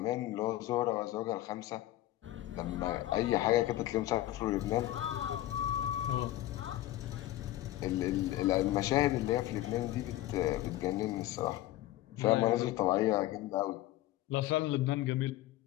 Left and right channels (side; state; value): right; quieter; 15.2 dB